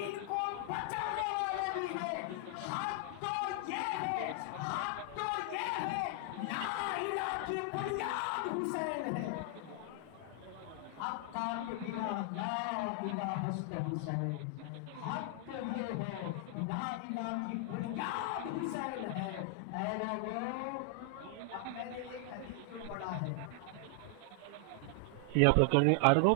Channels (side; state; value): both; different; correlation 0.00